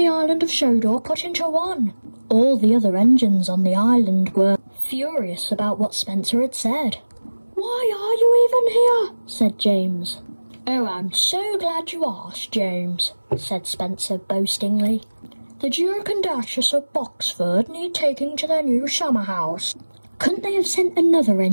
island of Sodor put into one." All the other engines on the island were furious about what Spencer had said. "Why are you even here?" said James. "Oh, I'm so glad you asked, James," said Spencer boastingly. "The Duke and Duchess of Boxford need taking to their new summer house." "Couldn't they have sent another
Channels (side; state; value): both; inverted; correlation -1.00